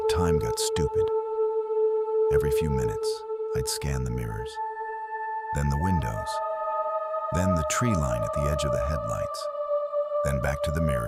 time got stupid. Every few minutes, I'd scan the mirrors, then the windows, then the tree line at the edge of the headlights, then back to the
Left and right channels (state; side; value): identical; both; correlation 1.00